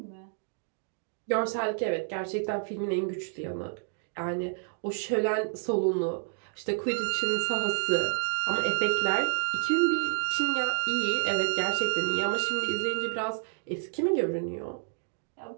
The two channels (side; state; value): left; silent; digital silence